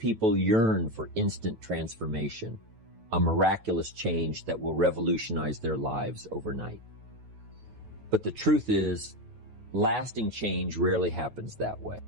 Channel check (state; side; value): late; left; 9.2 ms